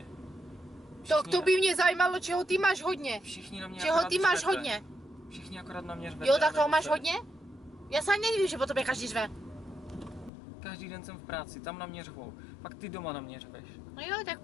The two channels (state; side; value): drops out; right; at 10.3 s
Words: To by mě zajímalo, čeho ty máš hodně. Všichni na mě Čeho akorát ty máš řvete. hodně? Všichni akorát na mě řvete. Jo, tak a toho máš nebudete. hodně? Já se ani nedivím, že po tobě každý řve. Každý den jsem v práci, tam na mě řvou. Pak ty doma na mě řveš. No jo, tak